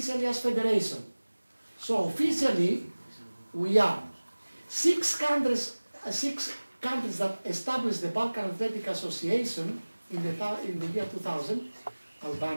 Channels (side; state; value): both; inverted; correlation -1.00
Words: as federation. So officially, we are 6 countries that established the Balkan Athletic Association in the year 2000,